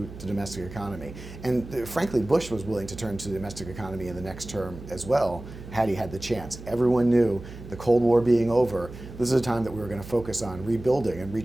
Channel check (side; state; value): right; noise; hum, 14 dB below the sound